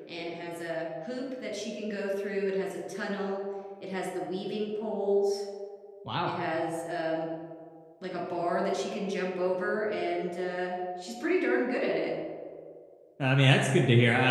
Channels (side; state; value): both; identical; correlation 1.00